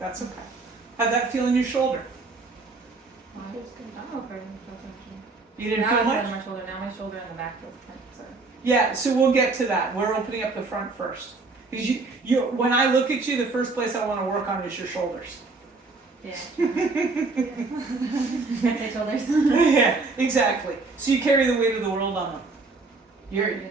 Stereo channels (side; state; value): left; quieter; 3.8 dB